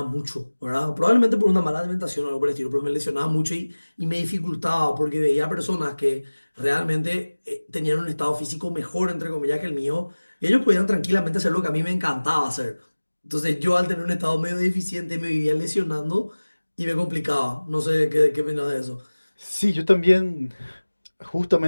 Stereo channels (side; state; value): both; inverted; correlation -1.00